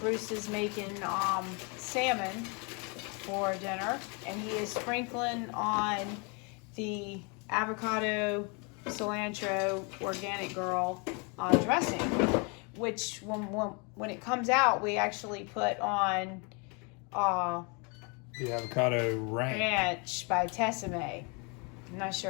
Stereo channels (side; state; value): right; quieter; 32.9 dB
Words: Bruce is making salmon for dinner, and he is sprinkling on the avocado cilantro organic girl dressing, which when it comes out, we actually put on the avocado ranch by Tessime. I'm not